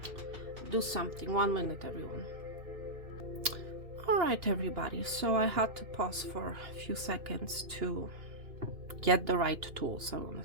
do something? 1 minute, everyone. All right, everybody. So I had to pause for a few seconds to get the right tools, I want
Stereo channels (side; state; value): left; late; 2.8 ms